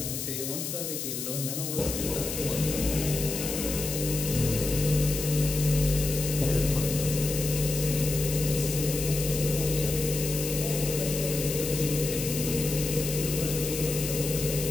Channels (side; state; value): left; noise; hiss, 5 dB below the sound